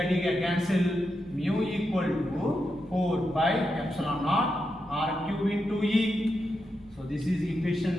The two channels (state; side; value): noise; left; rumble, 28 dB below the sound